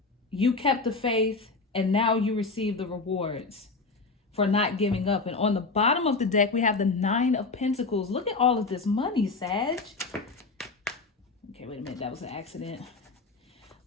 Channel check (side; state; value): right; quieter; 3.9 dB